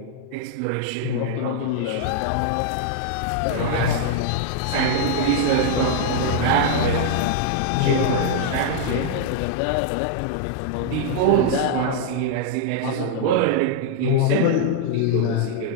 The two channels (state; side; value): different; both; correlation -0.01